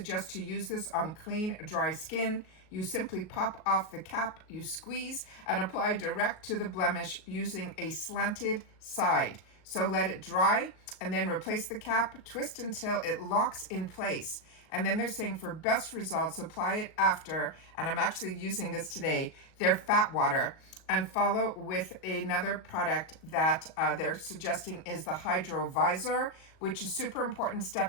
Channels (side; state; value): right; late; 38 ms